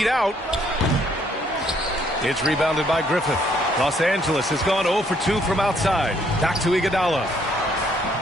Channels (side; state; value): both; normal; correlation 0.67